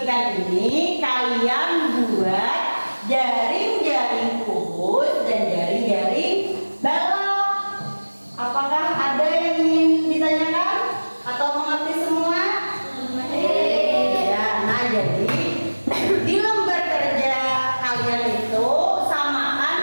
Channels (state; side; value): inverted; both; correlation -1.00